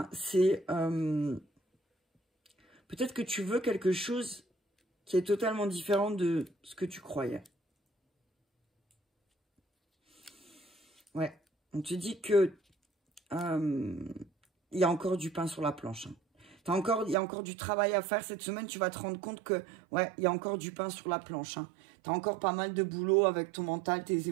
c'est peut-être que tu veux quelque chose qui est totalement différent de ce que tu croyais. Ouais, on te dit que il y a encore du pain sur la planche. Hein. Il y a encore du travail à faire cette semaine. Tu vas te rendre compte que, ouais, il y a encore du pain sur la planche. Hein. Tu as encore pas mal de boulot avec ton mental, tes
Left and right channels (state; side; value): drops out; left; at 17.2 s